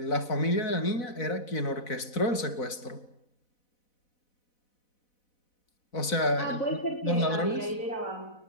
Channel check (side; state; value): right; late; 4.0 ms